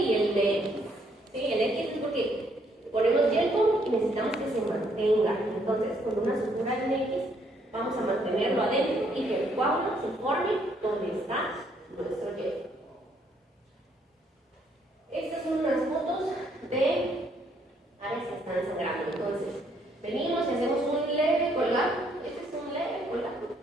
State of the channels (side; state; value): both; normal; correlation 0.69